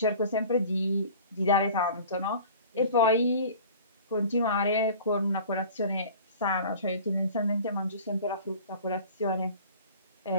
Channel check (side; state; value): both; inverted; correlation -0.44